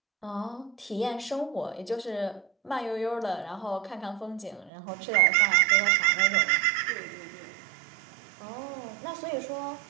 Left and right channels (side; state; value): left; drops out; at 4.7 s